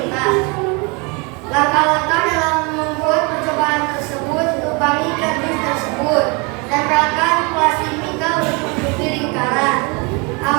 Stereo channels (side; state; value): left; quieter; 30.0 dB